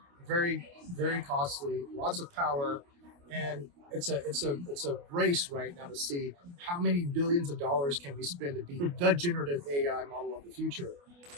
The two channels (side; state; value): left; late; 28 ms